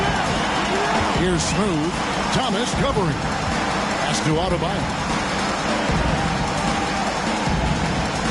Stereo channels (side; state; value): both; identical; correlation 1.00